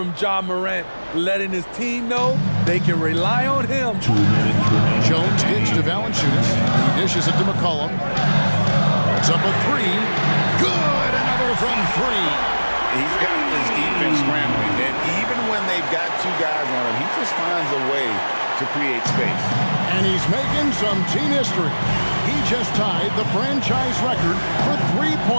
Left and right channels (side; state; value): both; inverted; correlation -1.00